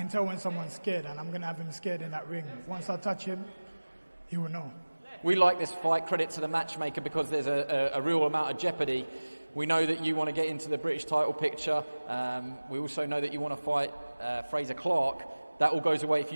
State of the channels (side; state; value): both; inverted; correlation -1.00